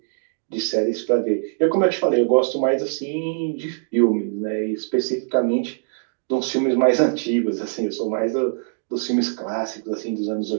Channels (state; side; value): silent; left; digital silence